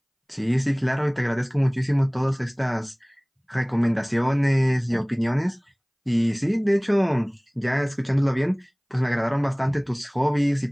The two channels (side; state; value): both; identical; correlation 1.00